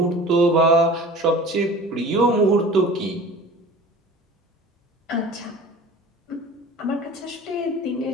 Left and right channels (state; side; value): normal; both; correlation 0.41